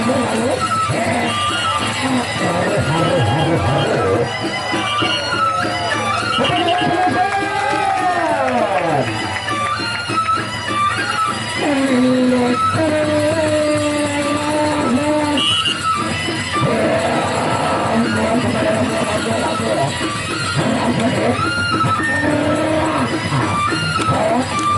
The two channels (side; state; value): both; identical; correlation 1.00